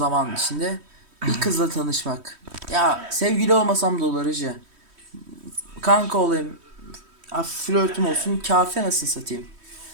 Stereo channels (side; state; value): left; late; 3.1 ms